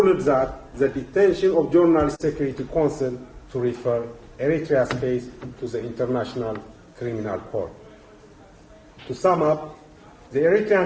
that the detention of Journalist Security Council to refer Eritrea's case to the International Criminal Court. To sum up, the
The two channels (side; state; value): both; identical; correlation 1.00